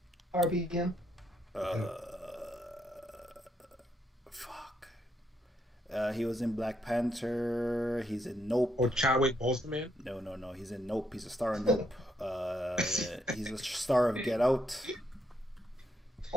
He was in Black Panther. He's in Nope. Or Chadwick Boseman? No. He's in Nope. He's a star in Nope. He's a star of Get Out.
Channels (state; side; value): normal; both; correlation 0.75